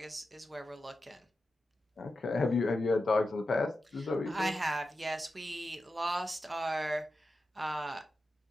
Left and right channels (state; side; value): normal; both; correlation 0.91